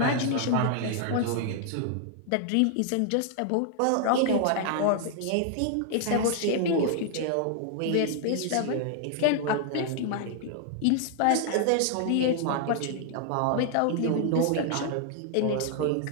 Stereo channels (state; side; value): different; both; correlation 0.00